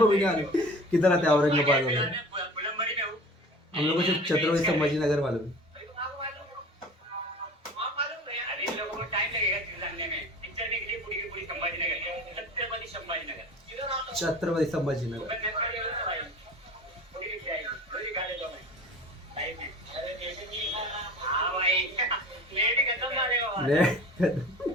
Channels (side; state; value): both; normal; correlation 0.40